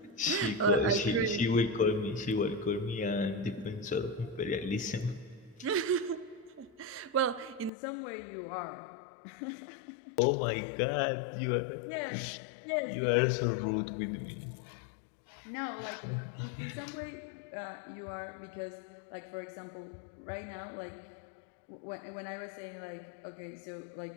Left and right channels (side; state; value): right; drops out; at 7.7 s